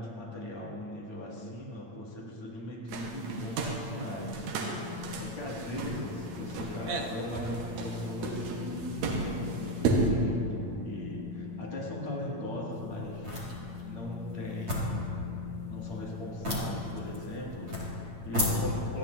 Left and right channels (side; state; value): left; late; 8.8 ms